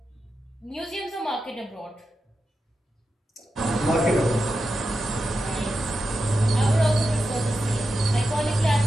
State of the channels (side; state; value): both; normal; correlation 0.89